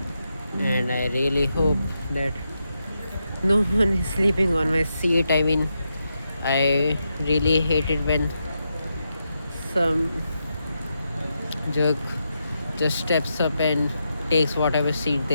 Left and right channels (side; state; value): both; inverted; correlation -0.85